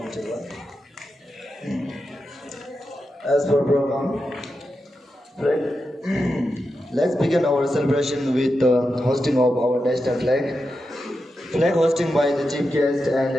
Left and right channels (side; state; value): both; normal; correlation 0.89